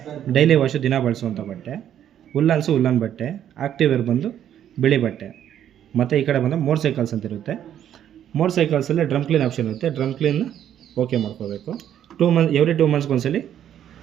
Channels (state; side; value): quieter; left; 10.3 dB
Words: ಡೈಲಿ ವಾಶು, ದಿನ ಬಳಸುವಂಥ ಬಟ್ಟೆ. ಉಲ್ಲನ್ಸು, ಉಲ್ಲನ್ ಬಟ್ಟೆ. ಆಕ್ಟಿವ್ ವೇರ್ ಬಂದು ಬಿಳಿ ಬಟ್ಟೆ. ಮತ್ತು ಈ ಕಡೆ ಬಂದು ಮೋಟರ್ ಸೈಕಲ್ಸ್ ಅಂತ ಇರುತ್ತೆ. ಮೋಟರ್ ಸೈಕಲ್ಸಲ್ಲಿ ಡ್ರಮ್ ಕ್ಲೀನ್ ಆಪ್ಷನ್ ಇರುತ್ತೆ. ಡ್ರಮ್ ಕ್ಲೀನ್ ಓಕೆ ಮಾಡ್ಕೋಬೇಕು. ಎವ್ರಿ 2 ಮಂತ್ಸ್ಗೆ ಒಂದ್ಸಲಿ